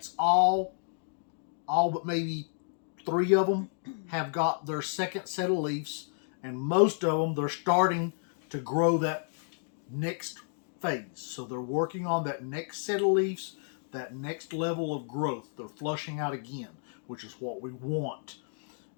all but maybe 3 of them have got their second set of leaves, and most of them, they're starting to grow that next phase. So they're working on that next set of leaves, that next level of growth. They're flushing out again, which is what we want.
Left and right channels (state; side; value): silent; right; digital silence